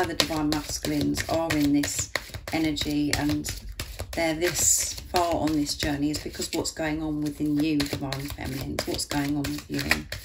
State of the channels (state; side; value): identical; both; correlation 1.00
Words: the Divine Masculines are in this energy and they're this far on this journey is because what's going on within you, Divine Feminines, what's going on with you.